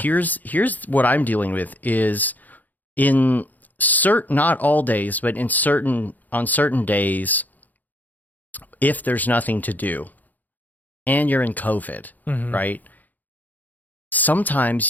Here's what I'm dealing with is in not all days, but on certain days, if there's nothing to do and you're in COVID, right?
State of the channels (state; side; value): late; right; 0.082 ms